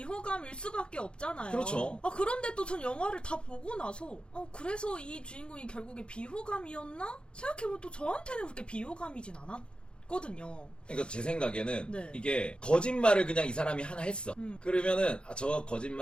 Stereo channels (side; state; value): right; late; 0.054 ms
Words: 수밖에 없잖아요. 그렇죠. 그런데 또 전 영화를 다 보고 나서 그래서 이 주인공이 결국에 비호감이었나? 생각해보면 또 저한테는 그렇게 비호감이진 않았거든요. 그러니까 제 생각에는 네. 이게 거짓말을 그냥 이 사람이 하나 했어. 그러면은 저